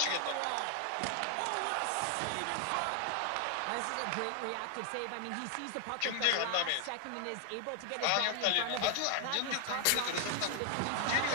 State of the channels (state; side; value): different; both; correlation 0.00